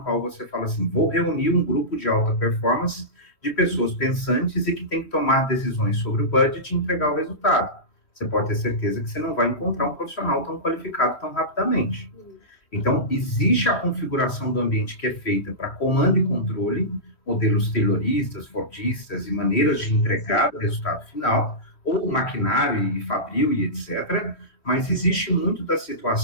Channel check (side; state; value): right; late; 3.2 ms